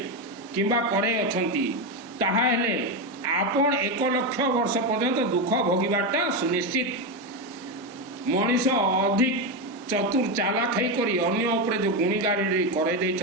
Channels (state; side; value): normal; both; correlation 0.11